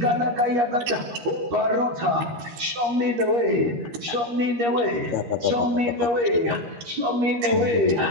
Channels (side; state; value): left; late; 13 ms